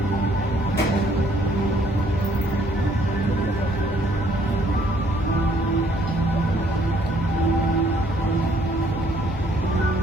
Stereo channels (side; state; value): both; normal; correlation 0.64